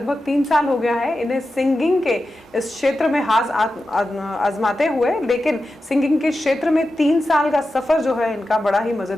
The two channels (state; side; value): normal; both; correlation 0.91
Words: 3 साल हो गया है इन्हें सिंगिंग के इस क्षेत्र में हाथ आजमाते हुए, लेकिन सिंगिंग के क्षेत्र में 3 साल का सफर जो है इनका बड़ा ही